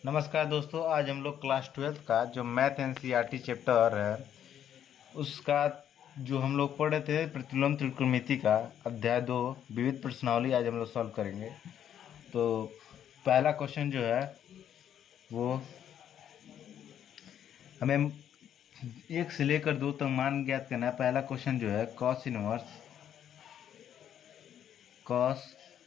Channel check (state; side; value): quieter; right; 9.8 dB